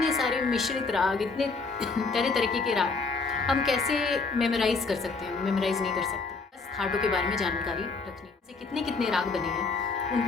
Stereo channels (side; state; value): right; quieter; 4.3 dB